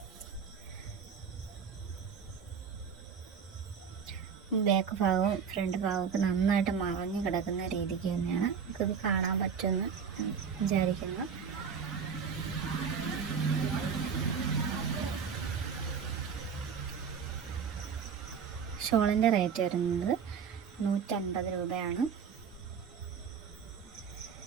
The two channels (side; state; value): left; quieter; 6.6 dB